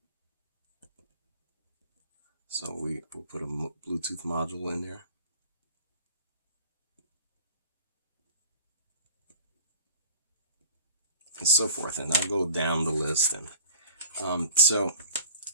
So we'll put a Bluetooth module in there. And so forth. And I'll go down the list. And so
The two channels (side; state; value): both; inverted; correlation -0.45